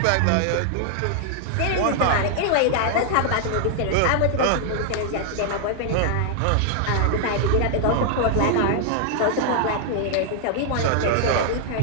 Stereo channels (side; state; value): both; different; correlation -0.01